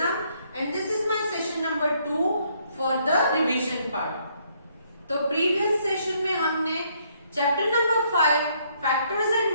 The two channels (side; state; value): both; inverted; correlation -0.69